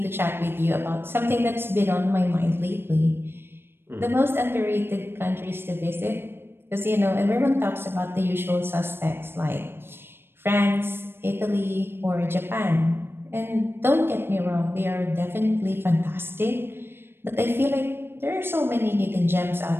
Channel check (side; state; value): left; late; 0.11 ms